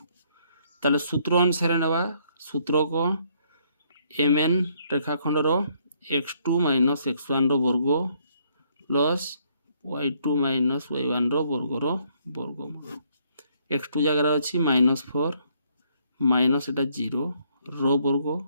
ताले सूत्र अनुसार नेबा सूत्र को mn रेखाखंड रो x2 - x1 रो वर्ग प्लस y2 - y1 रो वर्गमूल x2 जगह अछि -4 माइनस एटा 0 रो वर्ग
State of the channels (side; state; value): both; inverted; correlation -0.68